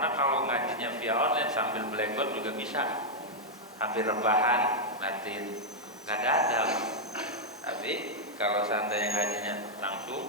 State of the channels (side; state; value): both; normal; correlation -0.03